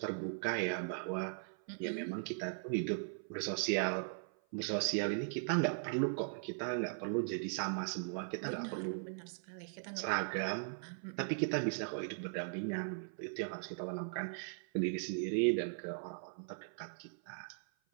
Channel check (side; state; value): left; silent; 52 dB below the other